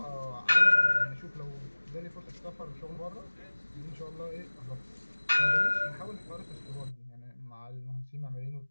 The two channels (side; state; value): both; inverted; correlation -1.00